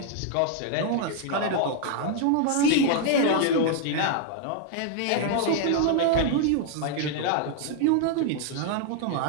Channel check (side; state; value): both; different; correlation 0.00